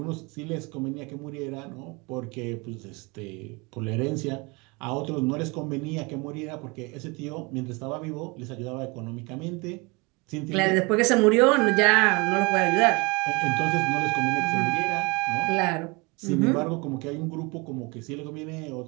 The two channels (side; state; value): left; quieter; 27.5 dB